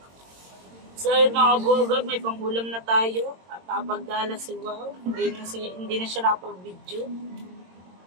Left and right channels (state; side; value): late; left; 22 ms